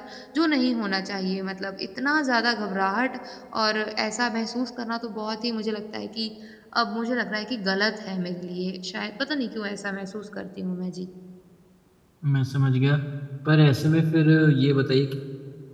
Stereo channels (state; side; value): identical; both; correlation 1.00